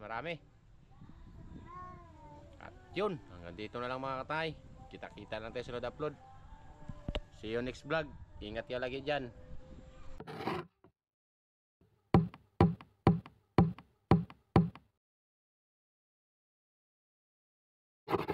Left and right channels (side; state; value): both; identical; correlation 1.00